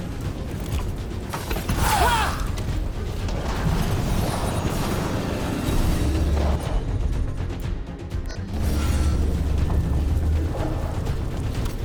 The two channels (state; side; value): identical; both; correlation 1.00